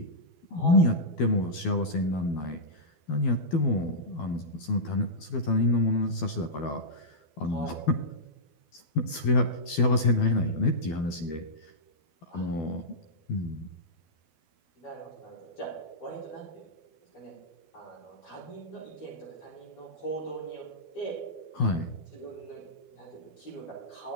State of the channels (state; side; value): late; right; 12 ms